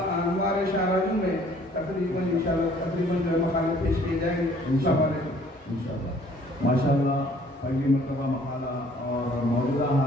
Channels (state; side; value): normal; both; correlation 0.57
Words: شاہراجوں میں تقریباً جو ہے مقالے پیش کیے جائیں گے. السلام علیکم. انشاءاللہ ماشاءاللہ پہلی مرتبہ مقالہ اور موجودہ